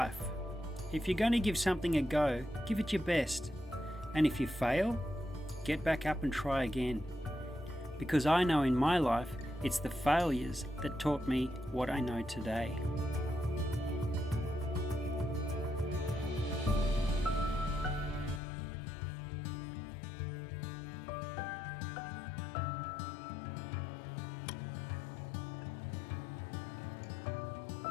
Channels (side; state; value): right; drops out; at 18.4 s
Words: If you're going to give something a go, give it your best. And if you fail, get back up and try again. Because I know in my life, it's the failures that taught me what I know today.